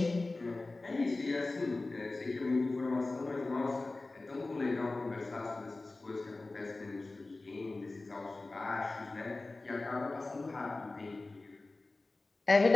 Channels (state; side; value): quieter; right; 3.2 dB